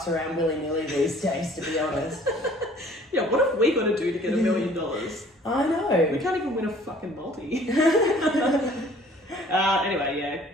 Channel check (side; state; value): both; normal; correlation 0.54